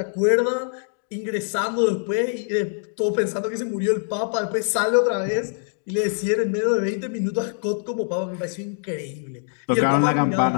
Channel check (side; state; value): right; silent; digital silence